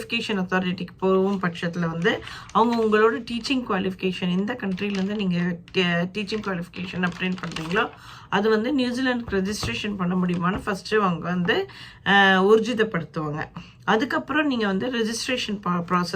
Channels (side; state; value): both; identical; correlation 1.00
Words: அத்தாரிட்டிக்கு போகும் பட்சத்தில் வந்து அவங்க உங்களோட டீச்சிங் குவாலிஃபிகேஷன் எந்த கண்ட்ரிலேருந்து நீங்கள் டீச்சிங் குவாலிஃபிகேஷன் அப்டேட் பண்ணுறீங்களோ அது வந்து நியூசிலாண்டுக்கு ரெஜிஸ்ட்ரேஷன் பண்ண முடியுமான்னு ஃபஸ்ட்டு அவங்க வந்து ஊர்ஜிதப்படுத்துவாங்க. அதுக்கப்புறம் நீங்கள் வந்து ரெஜிஸ்ட்ரேஷன்